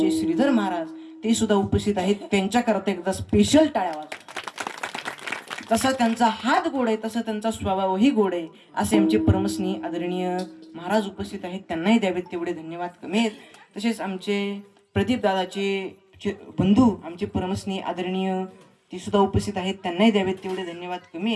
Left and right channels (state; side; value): identical; both; correlation 1.00